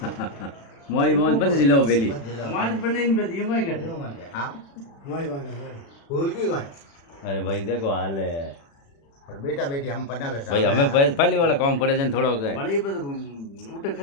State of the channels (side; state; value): right; late; 36 ms